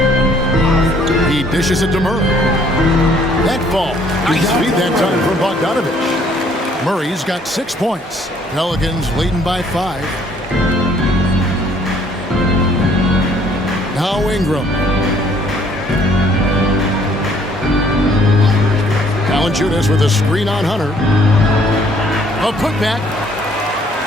He dishes it to Murray. That ball. Nice feed that time from Bogdanovich. Murray's got 6 points. Pelicans leading by 5. Now Ingram. Valanciunas with a screen on Hunter. A putback.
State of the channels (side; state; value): both; normal; correlation 0.62